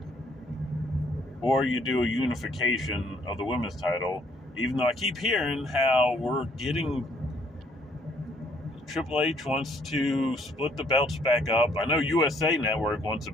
Or you do a unification of the women's title, even though I keep hearing how we're getting Triple H wants to split the belts back up. I know USA Network wants the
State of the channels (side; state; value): both; normal; correlation 0.65